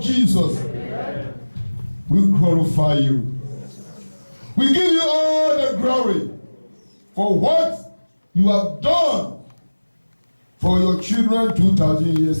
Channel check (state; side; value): inverted; both; correlation -1.00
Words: Jesus, we glorify you. We give you all the glory for what you have done for your children 2,000